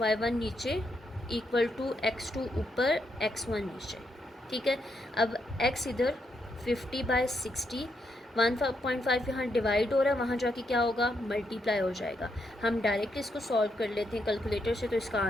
नीचे इक्वल टू x2 ऊपर x1 नीचे। ठीक है, अब x इधर 50/60, 1.5 यहाँ डिवाइड हो रहा है, वहाँ जाके क्या होगा मल्टीप्लाई हो जाएगा। हम डायरेक्ट इसको सॉल्व कर लेते हैं कैलकुलेटर से, तो इसका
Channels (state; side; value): normal; both; correlation 0.79